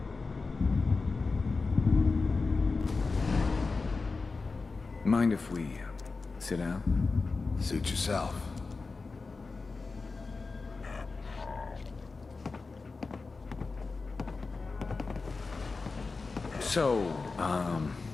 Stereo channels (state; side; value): quieter; right; 4.0 dB